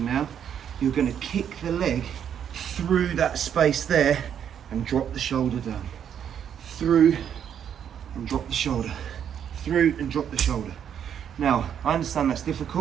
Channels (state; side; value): quieter; left; 8.8 dB